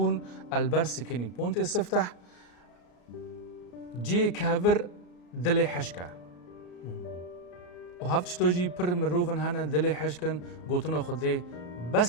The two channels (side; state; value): right; late; 34 ms